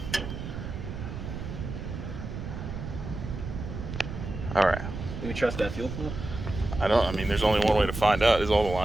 All right. Do we trust that fuel pump? I mean, there's only one way to find out. Is all the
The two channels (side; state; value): right; noise; rumble, 7 dB below the sound